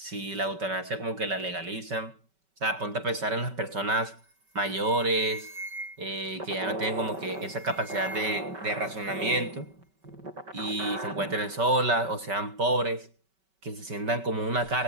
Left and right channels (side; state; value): left; late; 5.2 ms